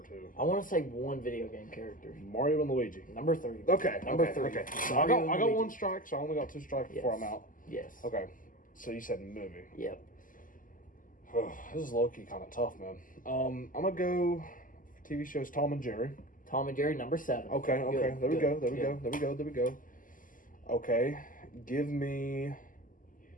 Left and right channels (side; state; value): right; late; 0.39 ms